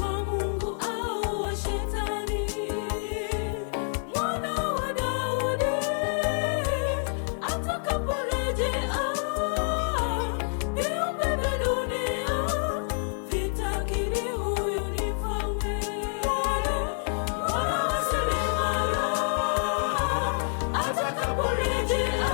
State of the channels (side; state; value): right; silent; digital silence